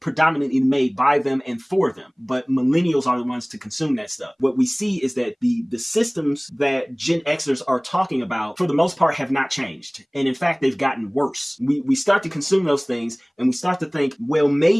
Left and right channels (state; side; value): identical; both; correlation 1.00